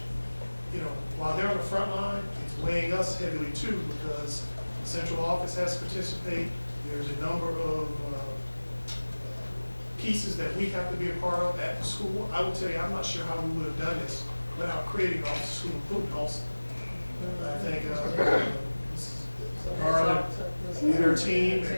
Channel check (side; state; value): both; inverted; correlation -1.00